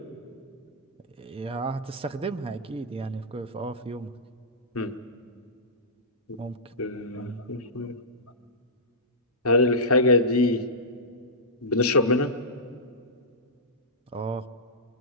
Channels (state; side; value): normal; both; correlation -0.15